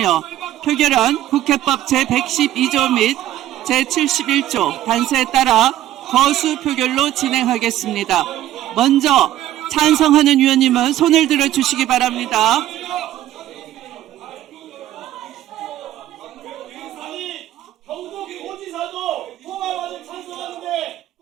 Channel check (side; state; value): left; quieter; 13.3 dB